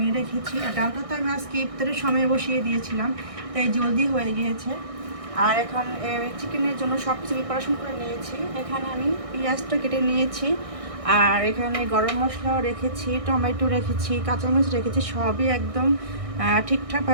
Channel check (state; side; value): late; left; 1.6 ms